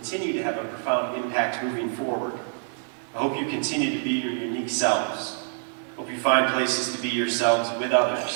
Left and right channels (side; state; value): left; silent; 61 dB below the other